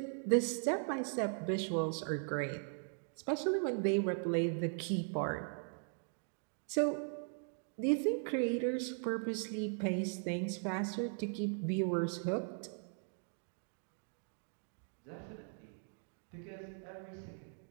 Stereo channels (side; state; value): left; silent; 52 dB below the other